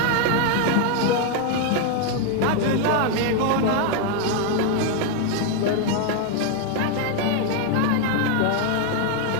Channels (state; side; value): different; both; correlation 0.01